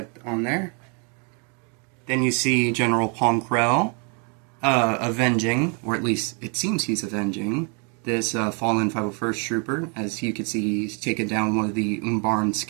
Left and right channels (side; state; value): left; quieter; 36.7 dB